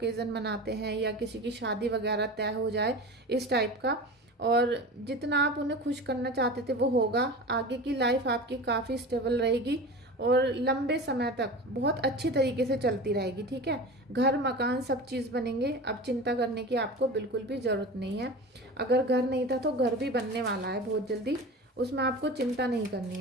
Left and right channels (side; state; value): both; normal; correlation 0.32